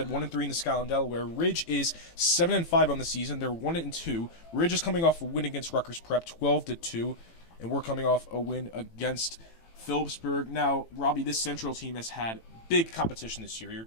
1-3 in the Skyline Delaware. Ridge is 7-5 on the season. They're 1-2. Ridge is coming off a win against Rutgers Prep, 12-2, and we're coming off a win against Phillipsburg. Now, Robbie, this Central team has had big competition this year. You're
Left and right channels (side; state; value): right; late; 18 ms